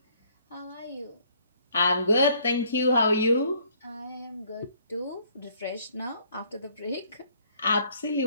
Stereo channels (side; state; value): both; inverted; correlation -0.62